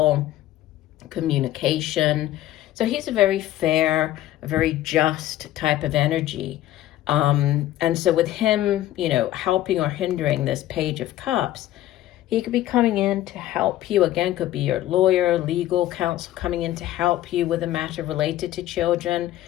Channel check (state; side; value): quieter; right; 14.0 dB